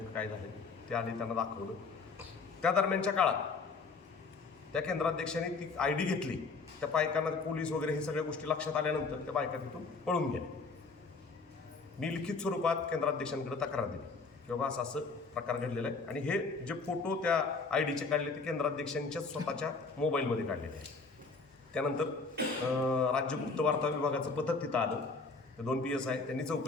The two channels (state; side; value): quieter; right; 4.2 dB